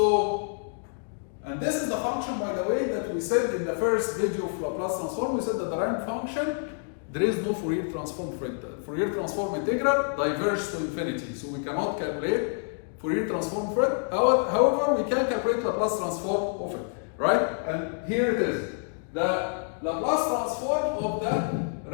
and this is the function, by the way, that we said in the first video of Laplace transform. We said that the ramp function, there is no Fourier transform for it. Fourier transform integral diverges to infinity, so we cannot calculate Fourier transform for it. However, we can calculate Laplace transform of it, right? And here it is. The Laplace transform of the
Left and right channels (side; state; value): right; silent; 60 dB below the other